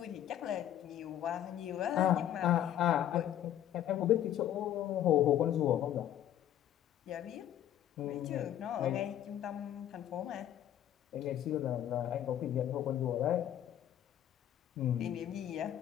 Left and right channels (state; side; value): quieter; right; 11.2 dB